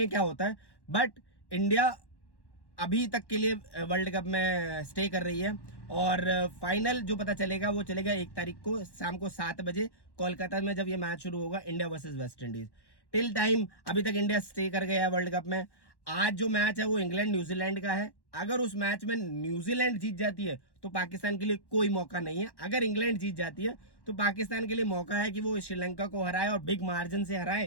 हैं क्या होता है। बट इंडिया अभी तक के लिए वर्ल्ड कप में स्टे कर रही है, और फाइनल जो पता चलेगा वो चलेगा 1 तारीख को शाम को 7 बजे कोलकाता में, जब ये मैच शुरू होगा India versus West Indies. Till time अभी तक इंडिया स्टे कर गया है वर्ल्ड कप में। आज जो मैच है वो इंग्लैंड न्यूजीलैंड का है। अगर उस मैच में न्यूजीलैंड जीत जाती है तो पाकिस्तान के लिए कोई मौका नहीं है। अगर इंग्लैंड जीत जाती है तो पाकिस्तान के लिए मौका है कि वो श्रीलंका को हराए और बिग मार्जिन से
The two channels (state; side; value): late; right; 1.1 ms